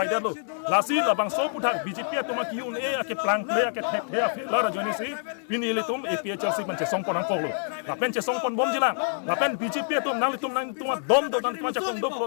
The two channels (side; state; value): right; silent; digital silence